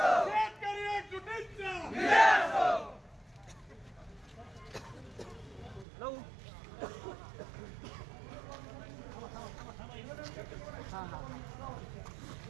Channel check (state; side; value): drops out; left; at 5.9 s